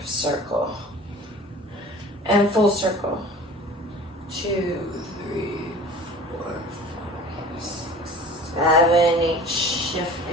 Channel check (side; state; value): both; normal; correlation 0.43